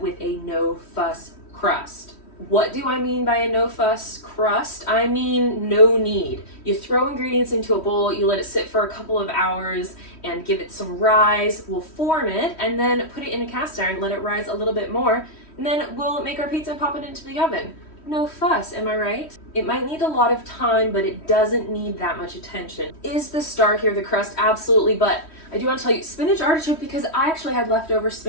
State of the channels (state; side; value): late; right; 3.1 ms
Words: a no-fuss crust. What do I mean by a no-fuss crust? I mean no knead. You throw ingredients into a bowl, you let it sit for a couple of hours and give it some rise. We'll form it and then put it in a cast iron, let it rise a little bit more, and then we'll make our pizza and pop it into the oven. No fuss, am I right? It might need a lot of time, but it doesn't need that much attention. Is the star here the crust? Absolutely, but I do want to tell you spinach artichoke because I actually had leftover